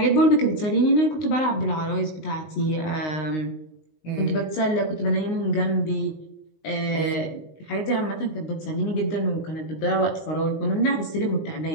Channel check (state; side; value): late; right; 19 ms